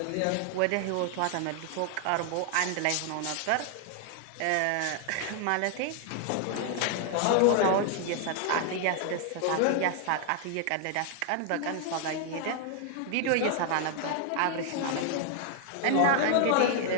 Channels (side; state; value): both; different; correlation 0.00